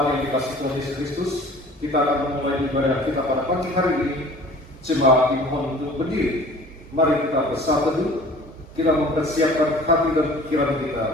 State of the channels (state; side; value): normal; both; correlation 0.46